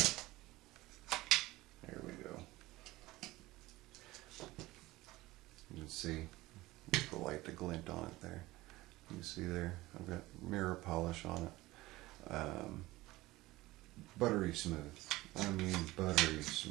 There we go. You can see the light, the glint on it there. You can see there, I've got mirror polish on it. Buttery smooth. I mean buttery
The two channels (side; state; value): left; quieter; 18.9 dB